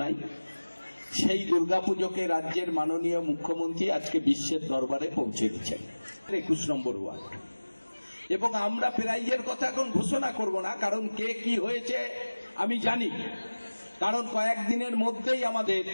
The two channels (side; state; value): both; inverted; correlation -1.00